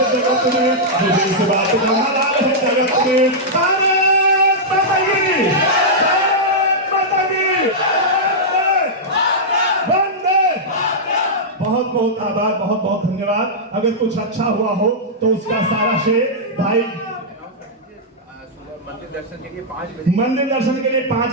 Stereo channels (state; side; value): normal; both; correlation -0.09